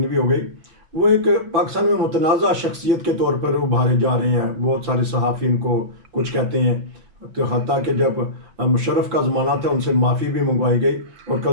भी हो गई, वो एक पाकिस्तान में मुतनाज़ा शख्सियत के तौर पर उभारे जा रहे हैं। बहुत सारे सहाफ़ी इनको कुछ कहते हैं, तो हत्ता कि जब मुशर्रफ का ज़माना था उनसे माफ़ी भी मंगवाई गई, और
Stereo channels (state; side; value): late; left; 5.9 ms